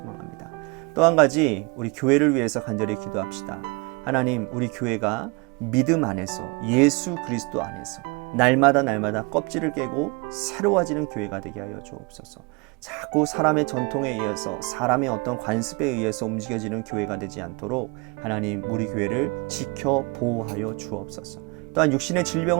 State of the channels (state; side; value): quieter; left; 29.1 dB